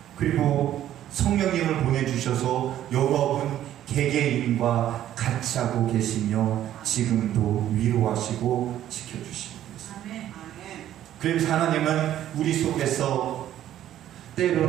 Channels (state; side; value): quieter; left; 12.0 dB